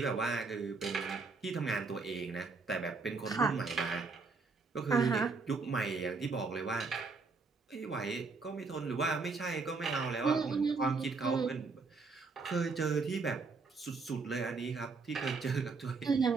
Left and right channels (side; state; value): left; quieter; 4.4 dB